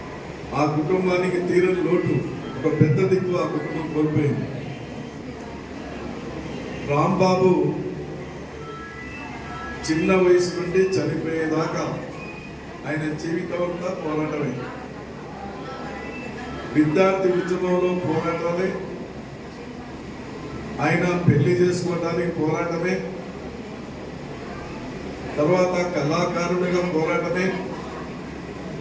ఆ కుటుంబానికి తీరని లోటు, ఒక పెద్ద దిక్కు ఆ కుటుంబం కోల్పోయింది. రాంబాబు చిన్న వయసు నుండి చనిపోయేదాకా ఆయన జీవితం అంతా పోరాటమే. విద్యార్థి ఉద్యమంలో పోరాటమే, ఆయన పెళ్లి చేసుకోవడానికి పోరాటమే, తర్వాత కళాకారుడిగా పోరాటమే,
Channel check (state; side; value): identical; both; correlation 1.00